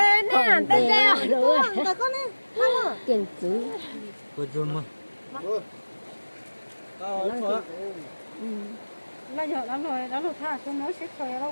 nè, tên reo. rồi Rồi con nè. tiền chứ Cô dùm mà. Bây giờ lắm rồi, nó lục tha xuống nó xếp khởi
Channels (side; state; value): both; inverted; correlation -1.00